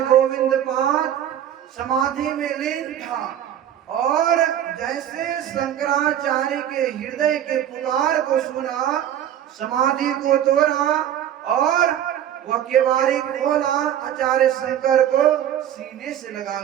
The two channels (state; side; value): quieter; left; 10.6 dB